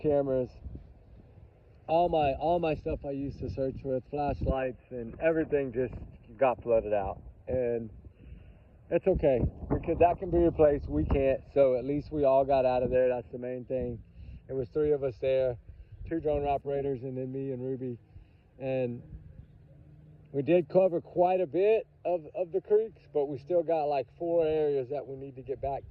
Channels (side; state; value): both; identical; correlation 1.00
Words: all my stuff I used to search with, flashlights and everything just got flooded out. And it's okay because that can be replaced. We can't. So at least we all got out of there. That's the main thing. It was 3 of us there, 2 drone operators and then me and Ruby. And We did cover quite a bit of the creeks, but we still got like 4 areas that we need to get back